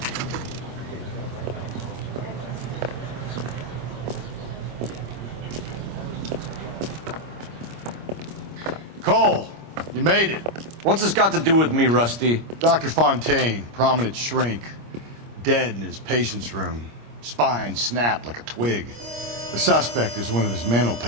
Cole, you made it. What's this got to do with me, Rusty? Dr. Fontaine, prominent shrink, dead in his patient's room. Spine snapped like a twig. The suspect is one of his mental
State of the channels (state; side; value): late; left; 26 ms